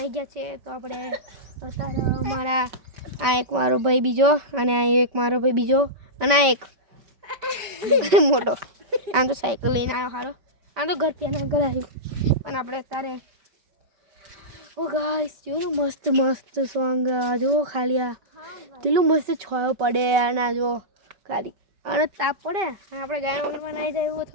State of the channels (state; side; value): late; left; 5.2 ms